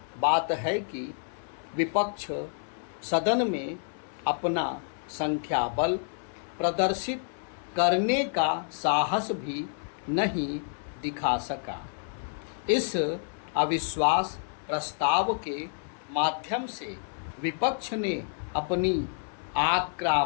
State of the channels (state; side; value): silent; right; 58 dB below the other